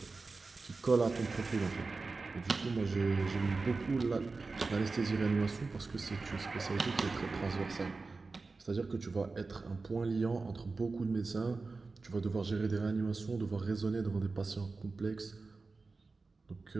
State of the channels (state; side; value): quieter; left; 3.9 dB